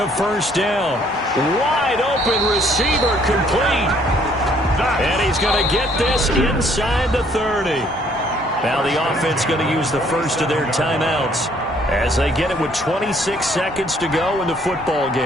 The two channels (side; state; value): both; normal; correlation 0.63